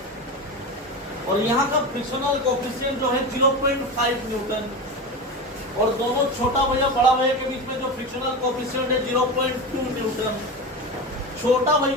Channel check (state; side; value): normal; both; correlation 0.23